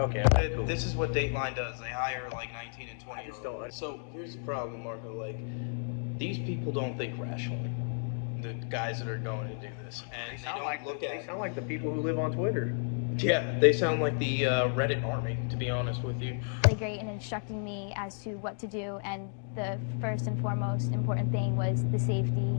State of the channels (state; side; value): silent; right; digital silence